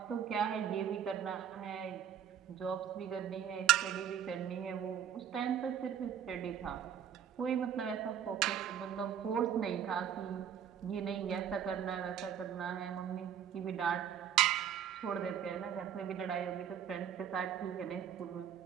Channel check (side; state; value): left; quieter; 9.0 dB